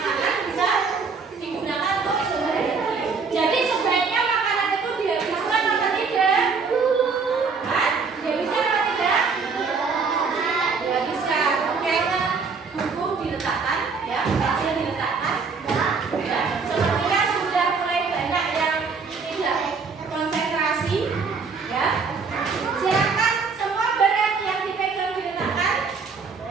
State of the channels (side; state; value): left; quieter; 5.0 dB